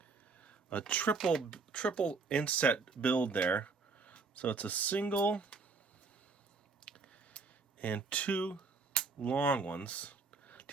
a triple inset build there. So it's a single and 2 long ones.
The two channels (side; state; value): left; quieter; 4.4 dB